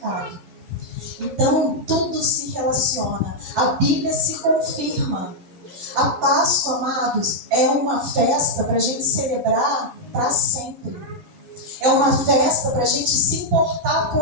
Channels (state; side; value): late; left; 11 ms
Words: Então, tudo se relaciona. A Bíblia se confirma. A Páscoa, amados, é uma festa para a gente celebrar para sempre. É uma festa para a gente se importar